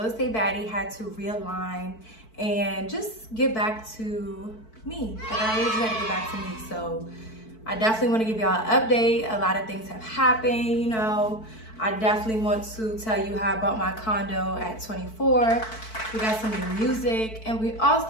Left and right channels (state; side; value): late; right; 4.6 ms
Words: estate baddie had to realign and just get back to me. Like, I really just had to get back to me. So I definitely want to give y'all an update. A lot of things have happened, you know. I definitely want to tell you how I bought my condo at 24. We got some new music, and we